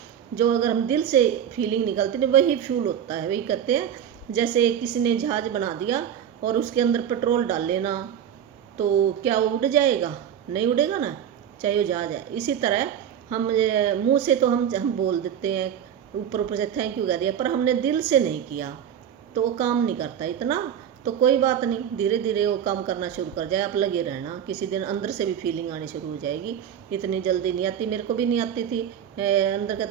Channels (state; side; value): quieter; left; 9.3 dB